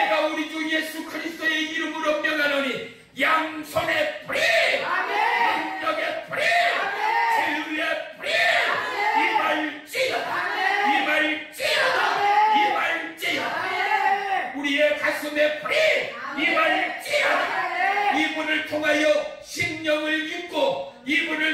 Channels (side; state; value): both; identical; correlation 1.00